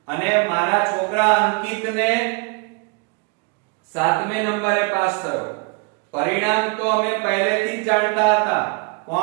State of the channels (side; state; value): left; quieter; 31.9 dB